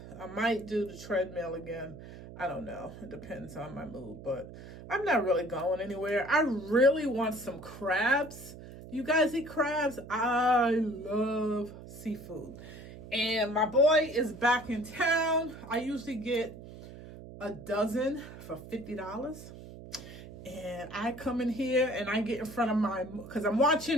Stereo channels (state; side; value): noise; right; hum, 15 dB below the sound